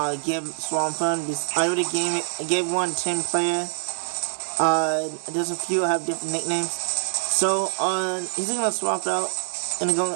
give Swampert. I already gave one 10 player. There's a few that have different nicknames. So he's gonna swap out. Gonna go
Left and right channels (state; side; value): silent; left; 62 dB below the other